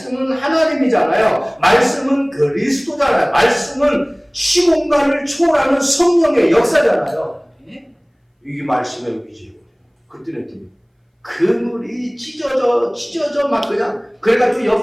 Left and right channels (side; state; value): both; identical; correlation 1.00